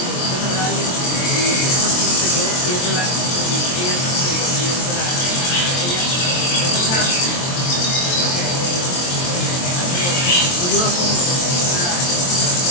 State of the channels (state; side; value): late; right; 23 ms